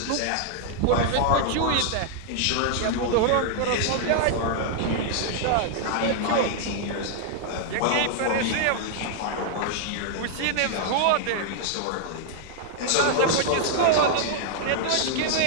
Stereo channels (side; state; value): both; different; correlation -0.01